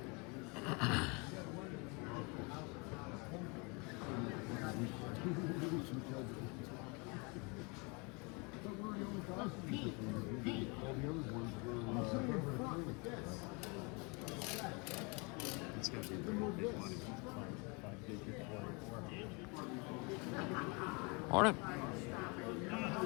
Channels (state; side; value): quieter; right; 30.6 dB